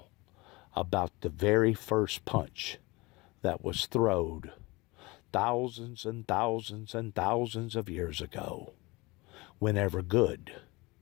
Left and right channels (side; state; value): right; quieter; 23.5 dB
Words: about the very first punch that was thrown thousands and thousands and thousands of years ago, whenever good